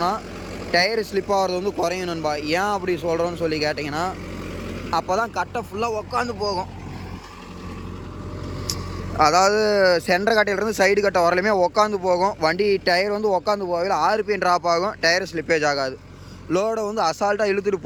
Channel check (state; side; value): identical; both; correlation 1.00